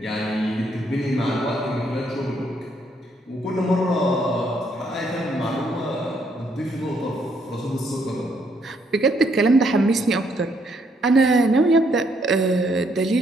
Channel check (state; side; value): normal; both; correlation 0.71